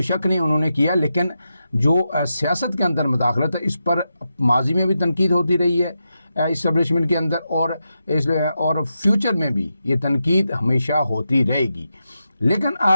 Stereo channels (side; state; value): both; inverted; correlation -0.88